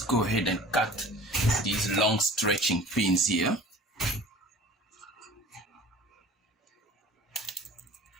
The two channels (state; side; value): normal; both; correlation 0.44